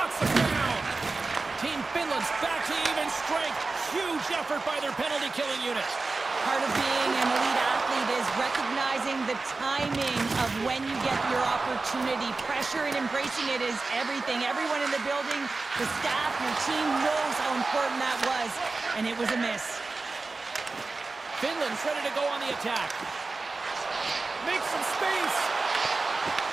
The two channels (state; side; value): quieter; left; 3.7 dB